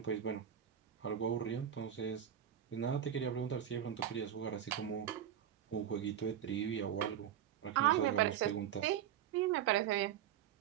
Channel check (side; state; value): left; quieter; 10.0 dB